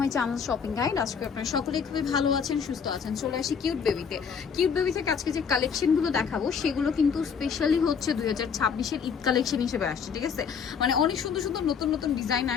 channel shopping guide. আজকে আপনারা সকলেই খুবই ভালো আছেন, সুস্থ আছেন। চলে আসি কিউট বেবিতে। কিউট বেবি থেকে আজকে যে কালেকশনগুলো দেখাবো সেগুলো কিন্তু স্পেশালি হচ্ছে 2026-এর ঈদ কালেকশন হিসেবে আসছে, ঠিক আছে? মানে অনেক সুন্দর সুন্দর নতুন নতুন ডিজাইন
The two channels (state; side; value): quieter; right; 6.6 dB